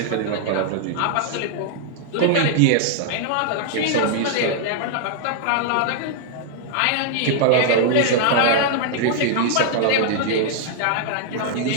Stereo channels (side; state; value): both; different; correlation 0.00